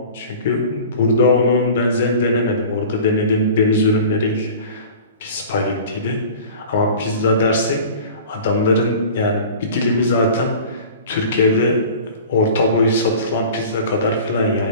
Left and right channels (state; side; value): inverted; both; correlation -0.41